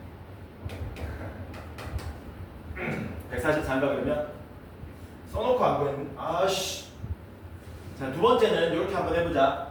144인가 그러면? 써놓고 안 곱했네. 아씨. 자, 두 번째는 이렇게 한번 해보자.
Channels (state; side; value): identical; both; correlation 1.00